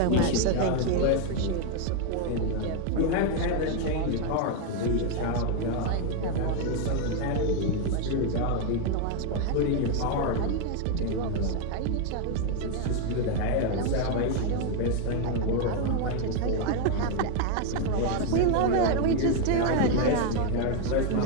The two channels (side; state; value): both; different; correlation 0.01